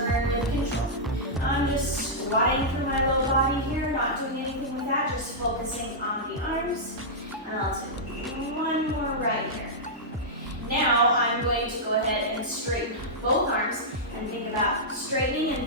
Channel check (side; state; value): both; normal; correlation -0.11